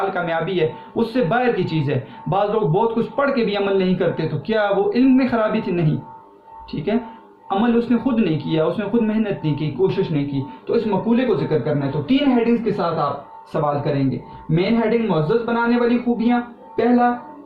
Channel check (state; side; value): identical; both; correlation 1.00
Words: کامیابی ہے, اس سے باہر کی چیز ہے. بعض لوگ بہت کچھ پڑھ کے بھی عمل نہیں کرتے, تو کیا وہ علم میں خرابی تھی؟ نہیں. ٹھیک ہے. عمل اس نے خود نہیں کیا, اس نے خود محنت نہیں کی, کوشش نہیں کی, تو اس مقولے کو ذکر کرنا ہے. تو 3 ہیڈنگز کے ساتھ آپ سوال کریں گے. مین ہیڈنگ معزز بنانے والی خوبیاں,